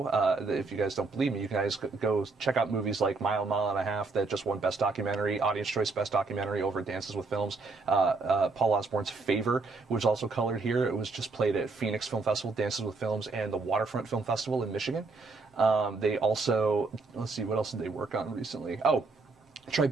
if you guys don't believe me, you guys go check out movies like Mile and a Half that just won Best Documentary, Audience Choice Best Documentary over at Dances with Films. Paul Osborne's Favor was also colored here. It was just played at Phoenix Film Festival, Dances with Films, and the Waterfront Film Festival in Michigan. They also, let's see, what else did they work on recently? Oh,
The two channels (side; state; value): left; quieter; 3.9 dB